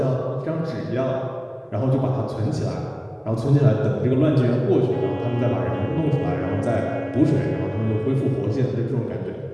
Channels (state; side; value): identical; both; correlation 1.00